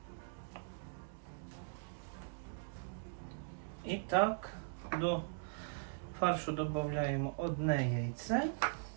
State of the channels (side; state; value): left; silent; digital silence